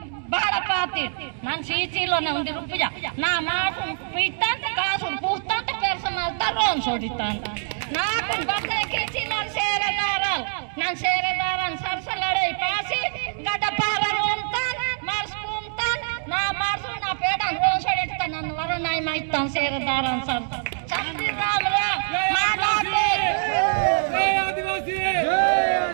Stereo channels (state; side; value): silent; left; digital silence